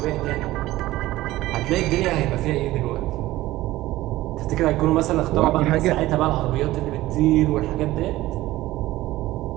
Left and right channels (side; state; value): left; quieter; 16.8 dB